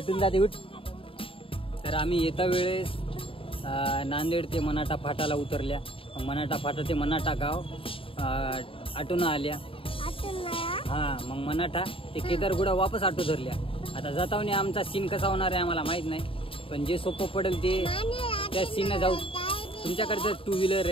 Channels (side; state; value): right; late; 0.26 ms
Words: जाते. उठ. तर आम्ही येता वेळेस नांदेड ते मनाठा फाटाला उतरल्या. मनाठा फाटा ते मनाठा गाव आटून आल्या. हा मग मनाठा ते केदारगुडा वापस आटो धरल्या. आता जातावनी आमचा सीन कसा होणार आहे आम्हाला माहित नाही. पण जे सोपं पडेल ते त्या सीनला जाऊ. तुमच्याकडे 2 व्हीलर